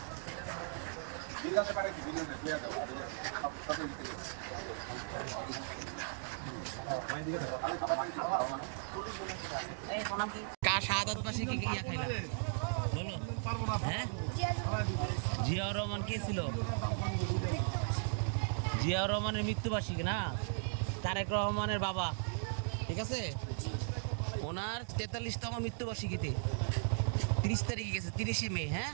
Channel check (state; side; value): silent; left; digital silence